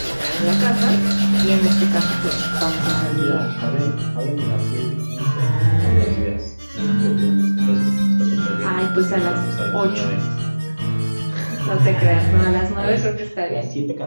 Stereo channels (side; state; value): both; inverted; correlation -1.00